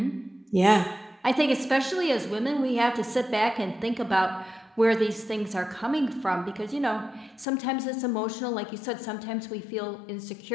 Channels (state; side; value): drops out; right; at 7.5 s